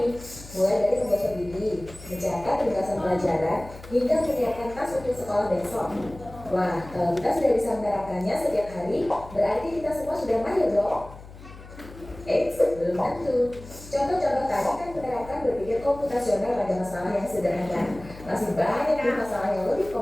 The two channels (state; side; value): noise; left; hum, 17 dB below the sound